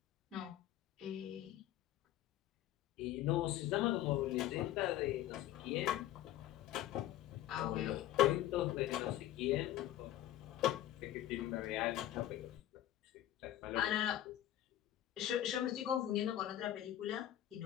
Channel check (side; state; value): right; quieter; 13.1 dB